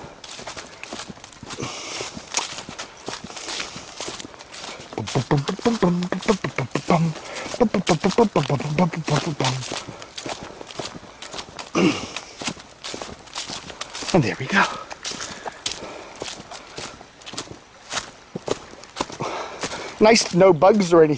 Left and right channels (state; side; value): identical; both; correlation 1.00